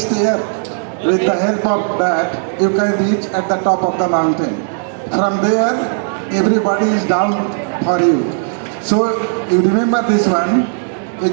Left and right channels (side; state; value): left; silent; digital silence